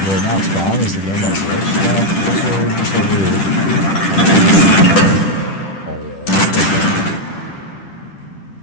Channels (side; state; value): right; late; 10 ms